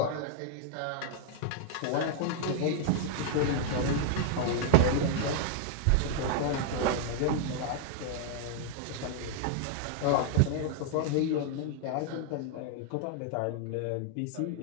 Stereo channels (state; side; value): different; both; correlation 0.00